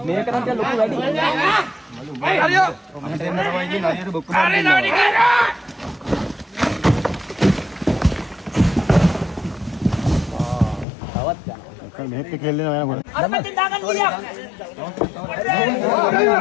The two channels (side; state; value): right; drops out; at 10.9 s